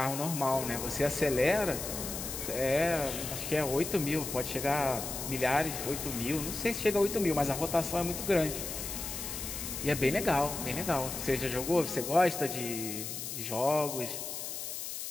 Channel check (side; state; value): left; noise; hiss, 6 dB below the sound